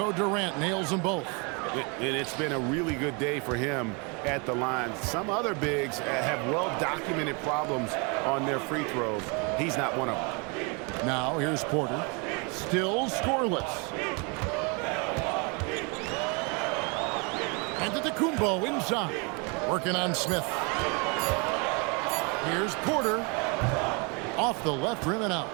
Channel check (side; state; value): left; quieter; 32.2 dB